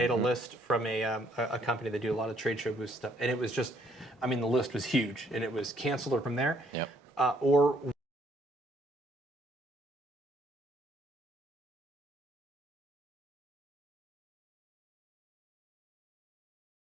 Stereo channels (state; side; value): normal; both; correlation 0.66